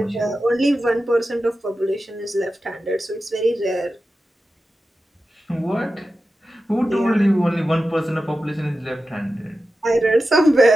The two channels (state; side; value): normal; both; correlation 0.92